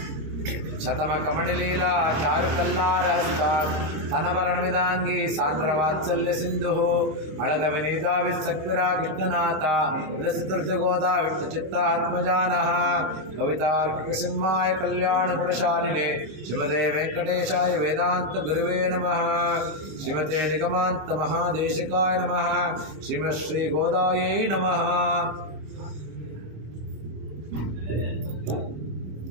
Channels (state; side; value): late; left; 26 ms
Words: ಶತಮ ಕಮಣಿಲೀಲಾ ಚಾರು ಕಲ್ಲಾರಹಸ್ತ ತನವರಣವಿದಾಂಗಿ ಸಾಂದ್ರ ವಾತ್ಸಲ್ಯ ಸಿಂಧು ಅಳಗ ವಿನೀದಾವಿ ಸಕ್ವಿರಾ ಕೃಷ್ಣನಾಥ ವಿರಸಿತೃಗೋದಾ ವಿಷ್ಣು ಚಿತ್ತಾತ್ಮಜಾನಃ ಕವಿತಾರ್ಕಿಕ ಸಿಂಹಾಯ ಕಲ್ಯಾಣ ಗುಣಶಾಲಿನಿ ಶ್ರೀಮತೆ ವೆಂಕಟೇಶಾಯ ವೇದಾಂತ ಗುರುವೇ ನಮಃ. ಶ್ರೀಮತೆ ನಿಗಮಾಂತ ಮಹಾದೇಶಿಕಾಯ ನಮಃ. ಶ್ರೀಮತ್ ಶ್ರೀ ಗೋದಾಯೈ ನಮಃ.